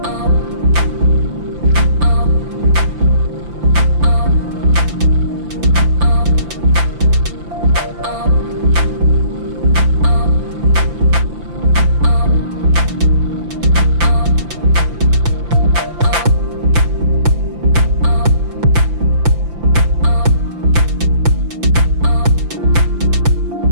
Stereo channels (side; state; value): left; late; 5.9 ms